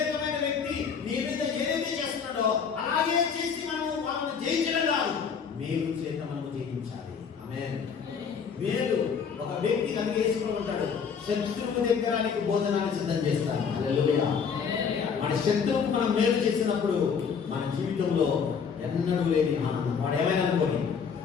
వ్యక్తి నీ మీద ఏదైతే చేస్తున్నాడో అలాగే చేసి వాళ్ళని జయించడం కాదు, మేలు చేత మనము జయించాలి. ఆమేన్. మేలు ఒక వ్యక్తి కనుకేసుకుని ఉంటాడు, శత్రువు దగ్గర నీకు భోజనాన్ని సిద్ధం చేస్తాడు. హల్లెలూయా. మన శత్రువుకు మనం మేలు చేసినప్పుడు మన జీవితంలో ఎన్నడూ లేని ఆనందం. వాడు ఏమైనా అనుకోని,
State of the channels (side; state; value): right; quieter; 6.4 dB